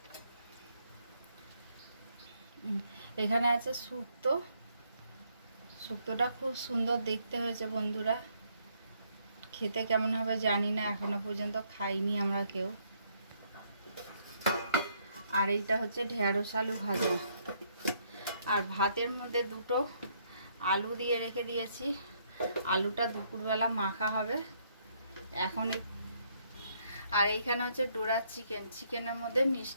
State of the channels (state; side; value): inverted; both; correlation -0.70